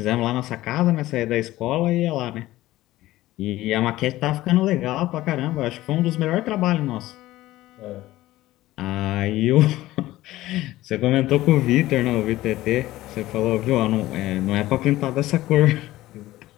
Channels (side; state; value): right; quieter; 16.4 dB